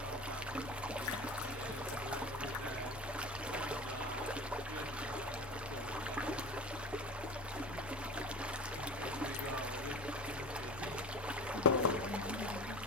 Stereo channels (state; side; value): normal; both; correlation 0.33